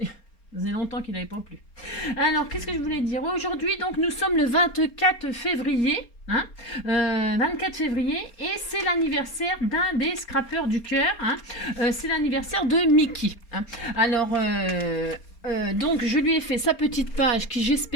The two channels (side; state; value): right; late; 4.3 ms